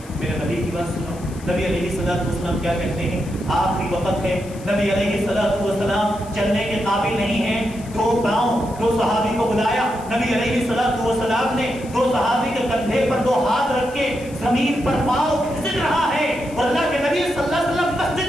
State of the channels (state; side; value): noise; left; hiss, 21 dB below the sound